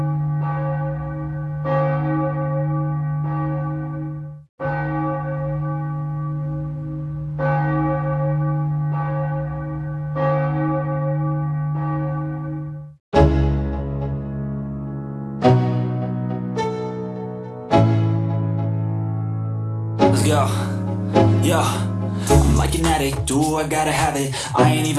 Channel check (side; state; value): both; identical; correlation 1.00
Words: Let's go. Yo, I'm like an addict, do I gotta have it. I ain't